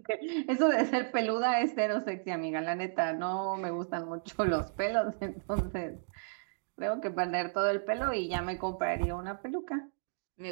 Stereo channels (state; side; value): silent; left; digital silence